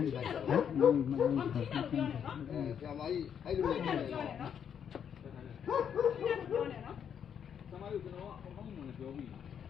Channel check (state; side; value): quieter; right; 8.2 dB